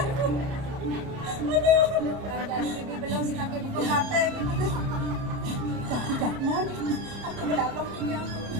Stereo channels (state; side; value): late; left; 30 ms